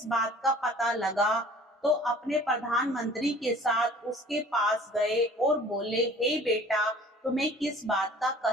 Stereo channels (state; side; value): normal; both; correlation 0.49